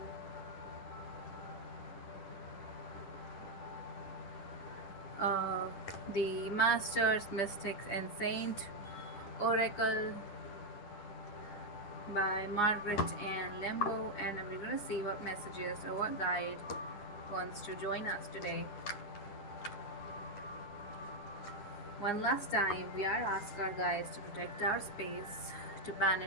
the Masters, Mystics, and Saint Oracle by Margaret Ann Lembo, and we're gonna see what messages or what guide wants to join us today. One last time, we are asking our guides to protect our space, to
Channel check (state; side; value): late; right; 10 ms